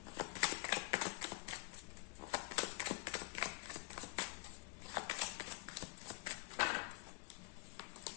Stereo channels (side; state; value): right; quieter; 23.5 dB